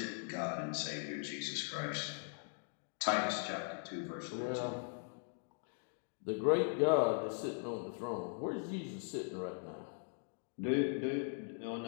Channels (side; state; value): right; silent; 51 dB below the other